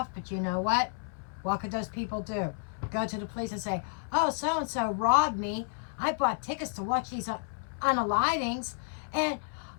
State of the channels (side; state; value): right; silent; 57 dB below the other